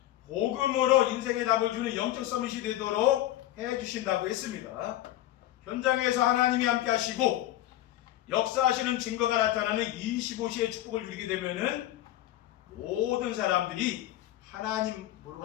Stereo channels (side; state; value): right; quieter; 14.2 dB